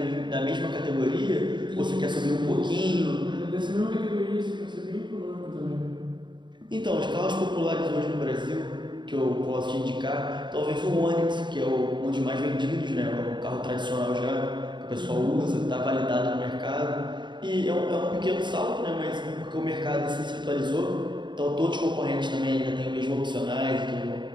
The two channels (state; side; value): late; left; 0.22 ms